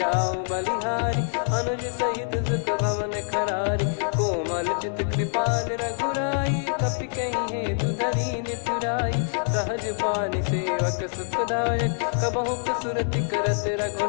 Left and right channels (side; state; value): right; silent; digital silence